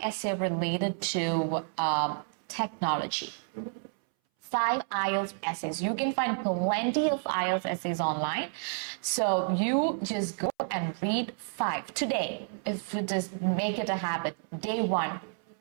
essays related to technology. 5 IELTS essays. You can find plenty of IELTS essays online. So you just go and read 5 today. If you just make it a habit, day 1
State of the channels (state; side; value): silent; left; 58 dB below the other